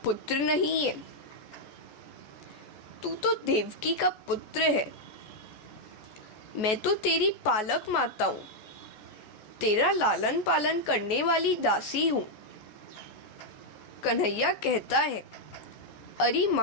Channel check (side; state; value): right; late; 14 ms